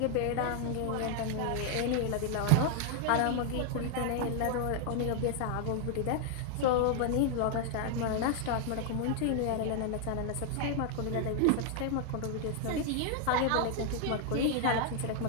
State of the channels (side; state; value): both; different; correlation 0.00